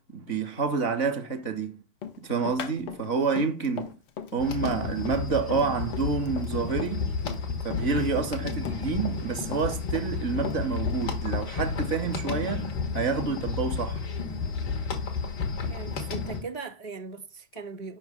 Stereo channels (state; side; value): late; right; 4.0 ms